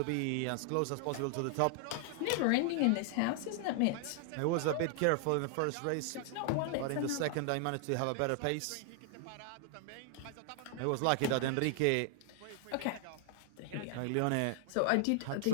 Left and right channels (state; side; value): different; both; correlation 0.00